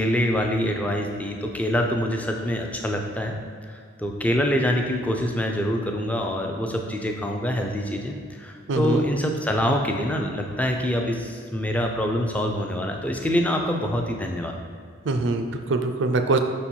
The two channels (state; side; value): normal; both; correlation 0.65